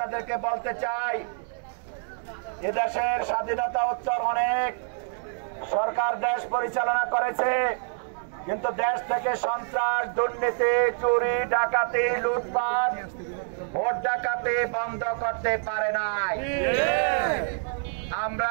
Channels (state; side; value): silent; left; 60 dB below the other